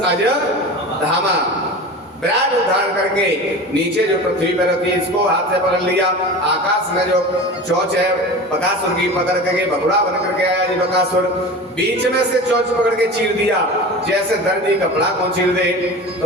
धामा। विराट धारण करके नीचे जो पृथ्वी पर रखी इसको हाथ से पकड़ लिया, आकाश में जो चोंच है बकासुर की पकड़ करके बगुड़ा बन करके आया जी बकासुर। बीच में से चोंच पकड़ के चीर दिया, जैसे दर्दी कपड़ा को चीर दे।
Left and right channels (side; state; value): both; normal; correlation 0.33